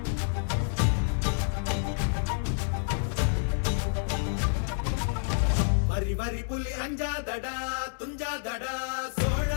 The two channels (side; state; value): right; silent; digital silence